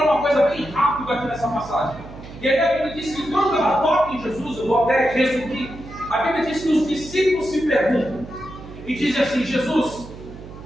uma coisa bem rápida aqui nessa passagem. E aí a Bíblia diz que quando ela toca em Jesus, eu vou até resumir, a Bíblia diz que os discípulos se perguntam e dizem assim: Jesus,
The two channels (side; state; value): right; noise; hum, 15 dB below the sound